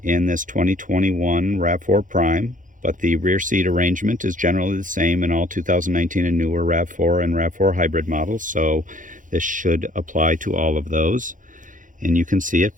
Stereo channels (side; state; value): left; late; 0.38 ms